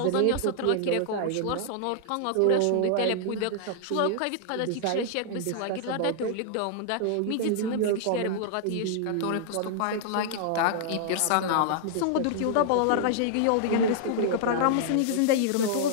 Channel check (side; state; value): both; different; correlation -0.01